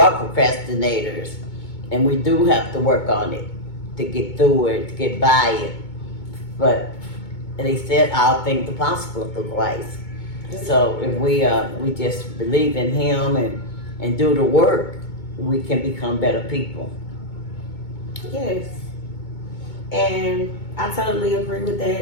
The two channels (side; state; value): right; late; 2.2 ms